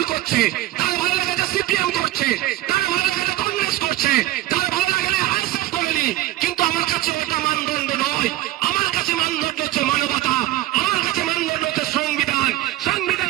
করছে, তার ভালো লেগেছে সিপিএম করছে, তার ভালো লেগেছে কংগ্রেস করছে, তার ভালো লাগলে আইএসএফ করেনি। কিন্তু আমার কাছে এটা মানদণ্ড নয়, আমার কাছে মানদণ্ড হচ্ছে মানবতা, আমার কাছে মানদণ্ড হচ্ছে সংবিধান। সংবিধান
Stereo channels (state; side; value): quieter; left; 15.7 dB